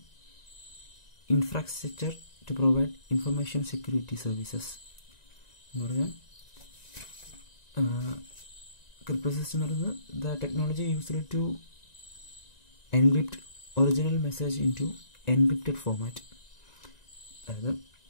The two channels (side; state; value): right; late; 1.9 ms